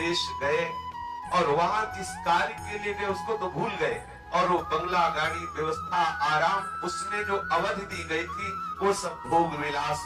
गए और वहां जिस कार्य के लिए गए उसको तो भूल गए, और वो बंगला, गाड़ी, व्यवस्था, आराम, उसमें जो अवधि दी गई थी वो सब भोग विलास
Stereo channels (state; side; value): identical; both; correlation 1.00